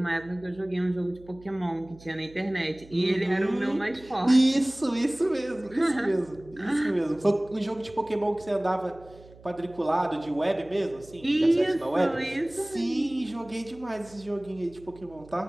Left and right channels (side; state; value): right; noise; hum, 22 dB below the sound